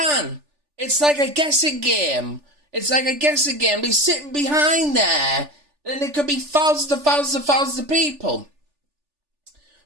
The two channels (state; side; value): late; left; 3.4 ms